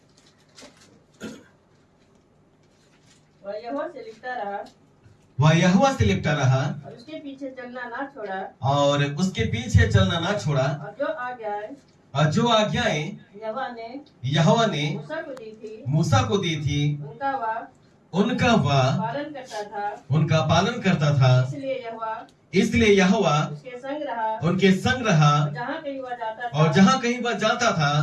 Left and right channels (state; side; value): identical; both; correlation 1.00